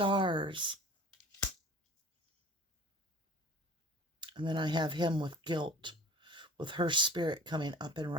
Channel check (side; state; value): both; normal; correlation 0.43